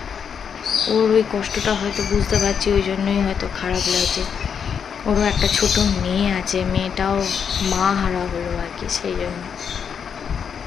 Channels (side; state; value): right; quieter; 7.1 dB